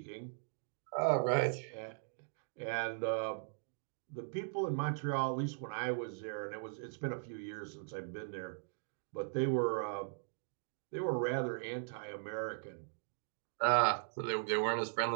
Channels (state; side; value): silent; left; digital silence